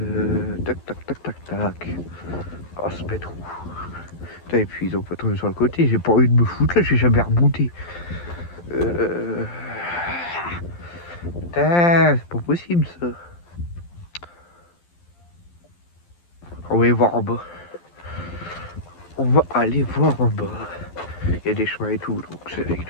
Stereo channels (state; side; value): late; right; 12 ms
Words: Tac, tac, tac, tac, tac. Oh, se mettre où? Putain, et puis ils ont pas tombé sur le côté. J'ai pas envie de me foutre là, j'ai jamais remonté. Putain, c'est pas possible ça. On va aller voir en bas. On va aller voir en bas. Il y a des chemins et tout, donc il